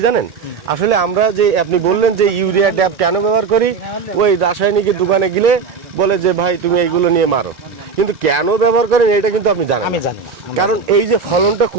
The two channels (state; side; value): quieter; left; 5.3 dB